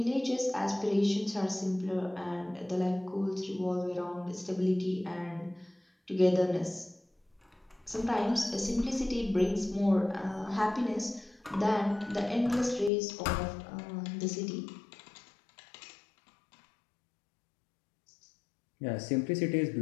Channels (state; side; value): drops out; right; at 12.9 s